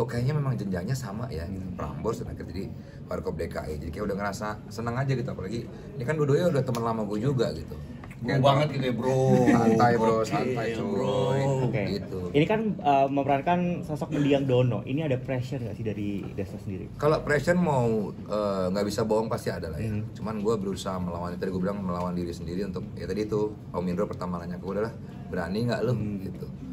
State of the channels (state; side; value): identical; both; correlation 1.00